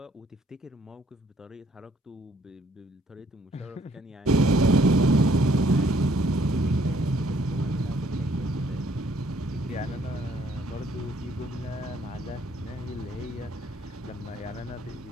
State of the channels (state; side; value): normal; both; correlation 0.64